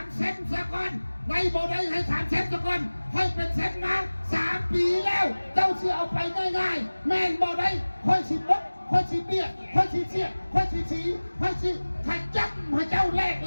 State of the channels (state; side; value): inverted; both; correlation -1.00